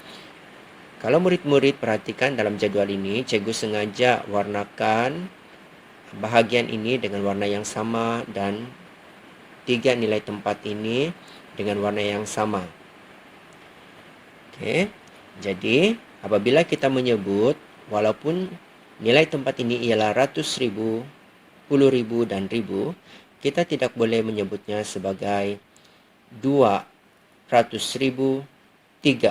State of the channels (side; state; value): both; identical; correlation 1.00